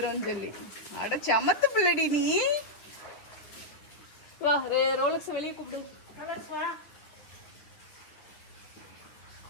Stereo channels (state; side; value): late; right; 9.3 ms